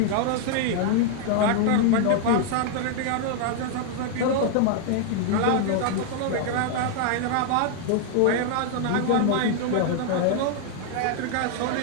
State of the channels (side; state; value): both; different; correlation 0.00